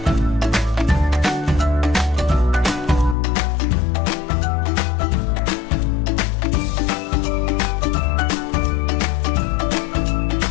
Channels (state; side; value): drops out; right; at 3.2 s